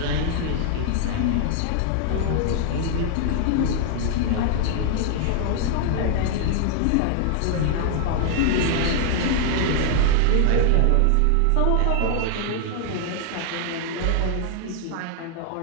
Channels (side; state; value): both; different; correlation -0.01